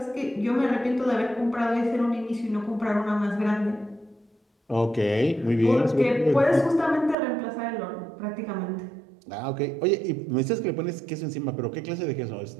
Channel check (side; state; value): left; drops out; at 7.2 s